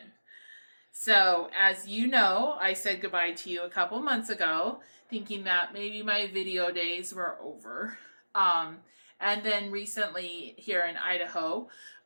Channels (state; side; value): inverted; both; correlation -1.00